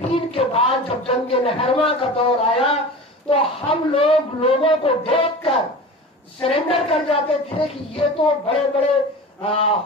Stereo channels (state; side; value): normal; both; correlation 0.34